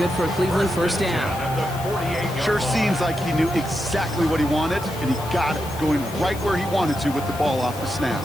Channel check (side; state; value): left; noise; hiss, 15 dB below the sound